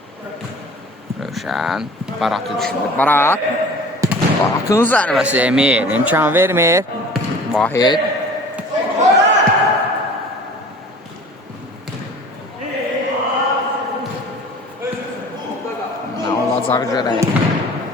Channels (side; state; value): both; normal; correlation 0.44